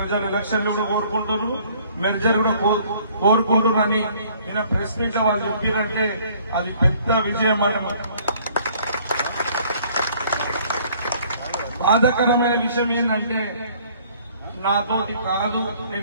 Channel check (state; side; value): inverted; both; correlation -0.58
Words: ఎలక్షన్లు కూడా కోరుకుంటున్నారు, మెర్జర్ కూడా కోరుకుంటున్నారని నిన్న ప్రెస్ మీట్ లో వాళ్ళు చెప్పారంటే అది పెద్ద విజయం అన్నమాట. బాధాకరమైన విషయం ఏంటంటే నాతోటి కాదు,